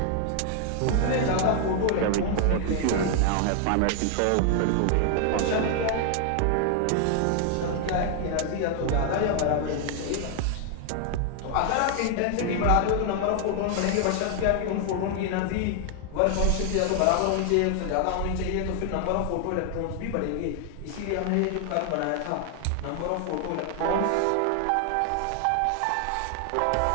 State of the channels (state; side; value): different; both; correlation 0.00